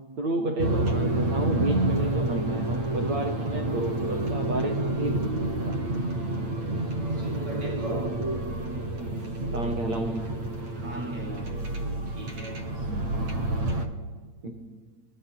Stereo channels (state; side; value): late; left; 8.8 ms